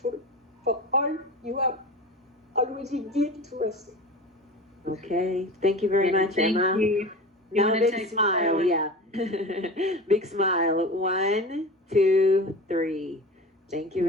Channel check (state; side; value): normal; both; correlation 0.32